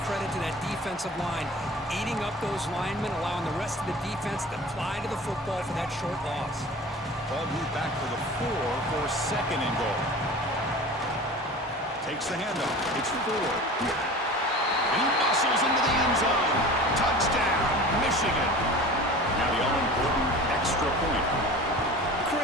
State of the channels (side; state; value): both; normal; correlation 0.38